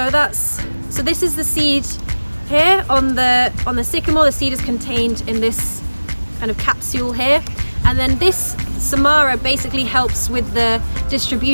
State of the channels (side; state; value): both; inverted; correlation -1.00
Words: this is the seed here on the sycamore. The seed is contained in this kind of capsule here, and then this samara basically helps with the